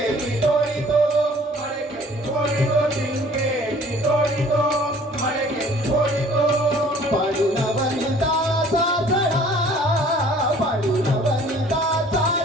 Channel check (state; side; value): normal; both; correlation 0.53